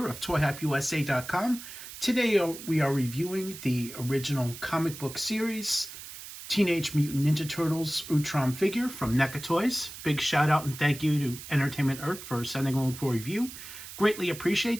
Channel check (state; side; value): noise; right; hiss, 13 dB below the sound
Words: of ToyHypeUSA.com. Today we are reviewing the original comic book series, Teenage Mutant Ninja Turtles Utrom figure from NECA Toys. Big shout out and thank you to Entertainment Earth for sending along for review. Greatly